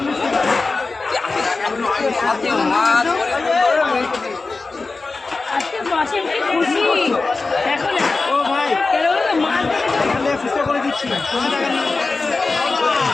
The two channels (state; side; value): quieter; right; 3.8 dB